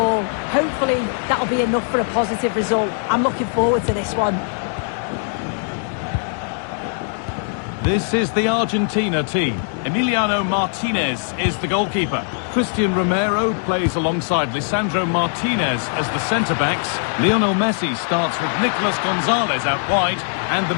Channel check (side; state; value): right; silent; digital silence